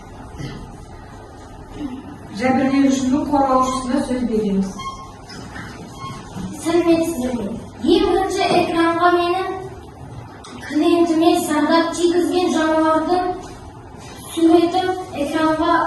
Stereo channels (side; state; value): both; identical; correlation 1.00